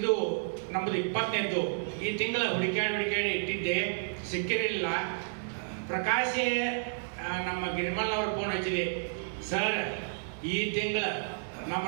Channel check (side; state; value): left; silent; digital silence